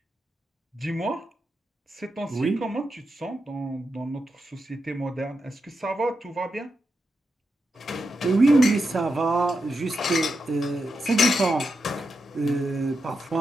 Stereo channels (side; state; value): both; normal; correlation 0.87